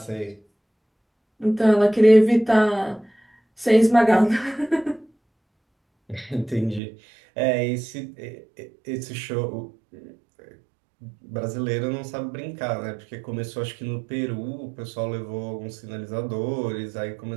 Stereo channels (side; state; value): left; drops out; at 6.8 s